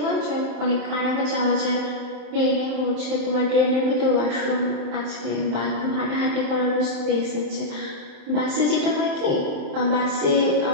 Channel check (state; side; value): late; left; 27 ms